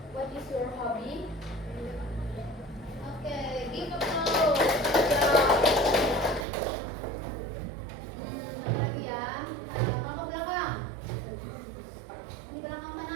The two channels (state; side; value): drops out; left; at 6.5 s